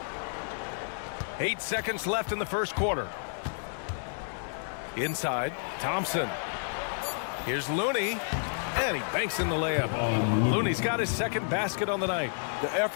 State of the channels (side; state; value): right; silent; digital silence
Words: Eight seconds left in the first quarter. Inside, Thompson. Here's Looney. And he banks in the layup. Looney's got his second basket on the night. The